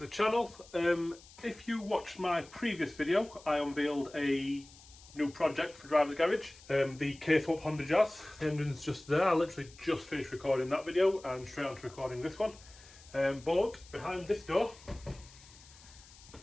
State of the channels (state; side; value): noise; left; hiss, 22 dB below the sound